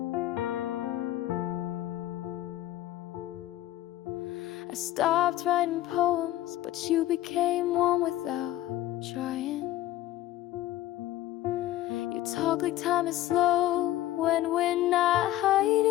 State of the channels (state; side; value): quieter; right; 14.6 dB